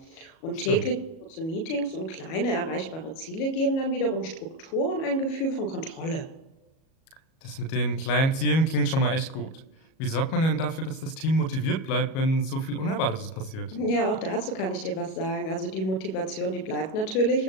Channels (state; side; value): late; right; 37 ms